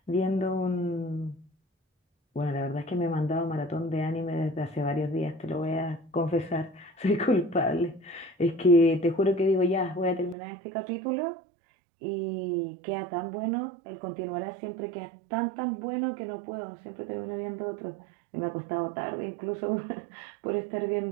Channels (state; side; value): drops out; left; at 10.4 s